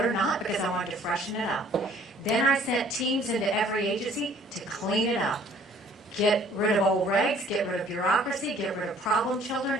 or not, because I wanted to freshen it up. Then I sent teams into every agency to clean it up. Get rid of old regs, get rid of bureaucracy, get rid of problem children,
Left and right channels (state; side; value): normal; both; correlation 0.57